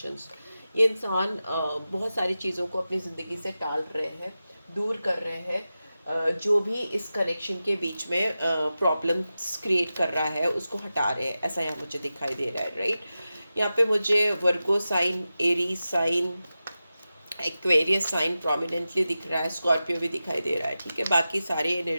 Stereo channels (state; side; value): inverted; both; correlation -0.93